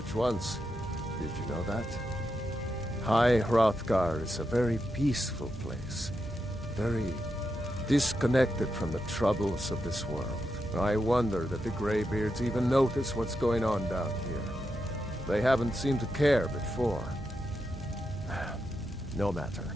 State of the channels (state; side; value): normal; both; correlation 0.86